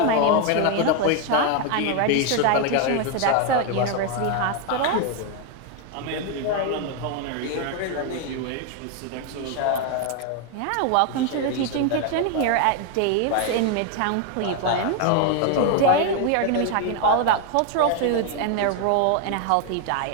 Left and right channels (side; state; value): both; different; correlation 0.01